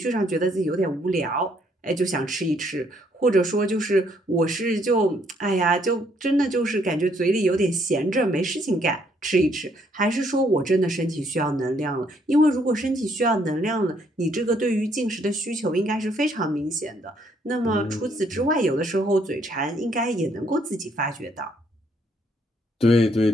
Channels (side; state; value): both; normal; correlation 0.69